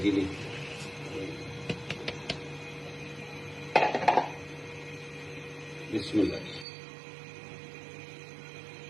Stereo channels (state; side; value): drops out; left; at 6.7 s